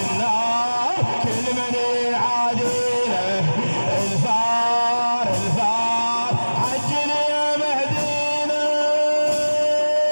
كل من يعادينا. الثار الثار عجل يا مهدينا.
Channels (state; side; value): inverted; both; correlation -1.00